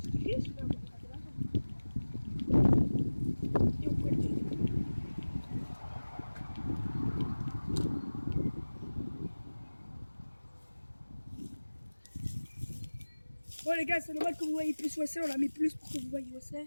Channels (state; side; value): inverted; both; correlation -1.00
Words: riche, mais on va regarder l'argent. Et on pourrait le dire. Bon les gars, c'est normal que vous voyez plus où c'est, on a mis plus pour que vous voyez où